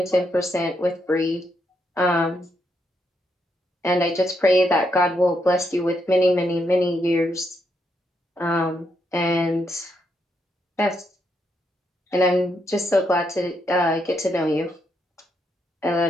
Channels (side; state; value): both; normal; correlation 0.78